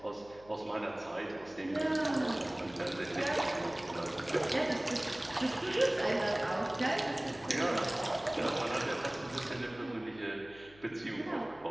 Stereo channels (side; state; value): left; noise; hum, 24 dB below the sound